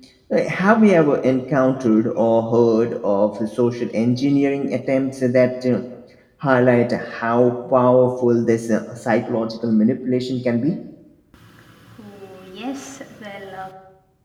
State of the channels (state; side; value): identical; both; correlation 1.00